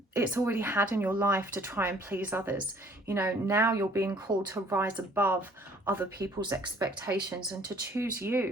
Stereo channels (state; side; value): normal; both; correlation 0.57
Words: it's already had in your life to try and please others. You know, now you're being called to rise above other people's expectations and to choose